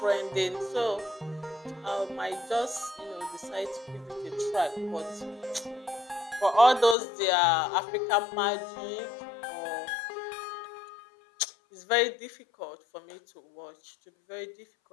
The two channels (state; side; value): drops out; right; at 7.0 s